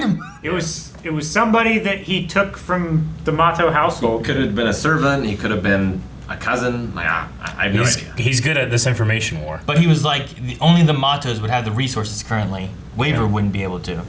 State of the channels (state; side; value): identical; both; correlation 1.00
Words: him? It was somebody that he took from the Mato household. Could have been a servant. He could have been a cousin. Like I have no idea. He's good at this information war. But he was like, only the Matos would have the resources currently. Waver wouldn't be able to